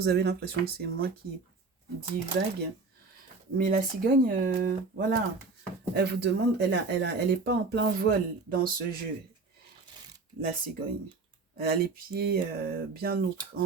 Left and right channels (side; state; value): left; quieter; 4.0 dB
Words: avez l'impression que c'est moi qui divague. Mais la cigogne, voilà, elle vous demande, elle est pas en plein vol dans ce jeu, la cigogne. Elle a les pieds bien